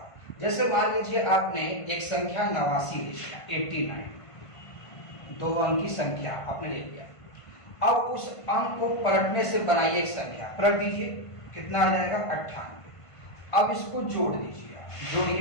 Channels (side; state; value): right; late; 1.5 ms